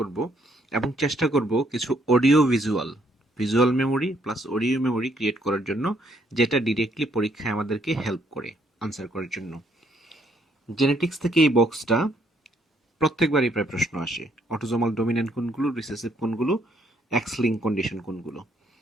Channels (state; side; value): normal; both; correlation 0.69